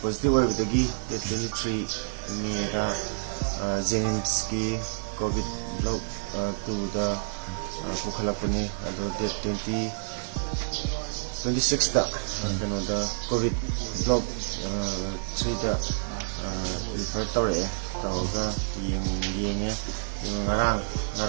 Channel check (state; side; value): silent; left; 59 dB below the other